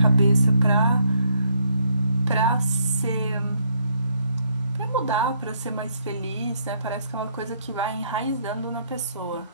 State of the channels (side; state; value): both; inverted; correlation -0.71